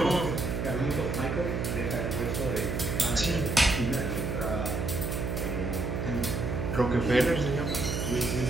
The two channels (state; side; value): noise; right; hum, 1 dB below the sound